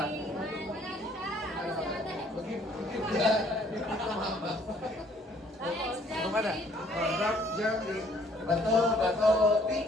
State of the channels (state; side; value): normal; both; correlation 0.61